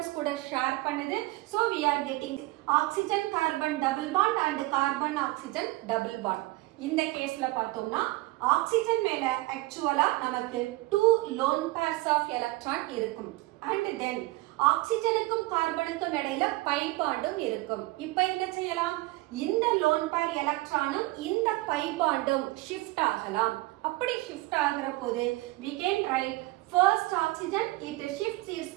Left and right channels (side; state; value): left; quieter; 20.5 dB